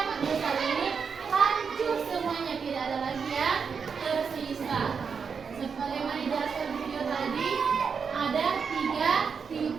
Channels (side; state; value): left; quieter; 6.0 dB